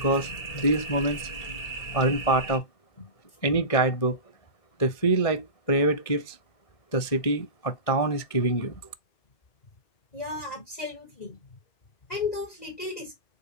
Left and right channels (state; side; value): late; right; 1.7 ms